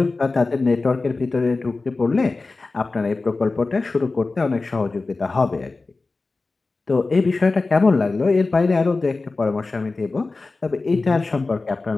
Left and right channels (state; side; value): quieter; right; 3.6 dB